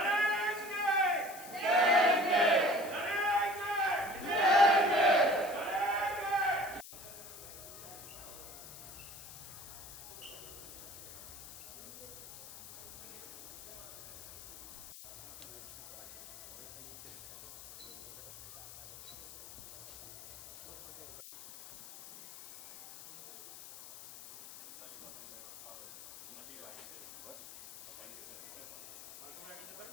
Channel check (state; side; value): noise; left; hiss, 15 dB below the sound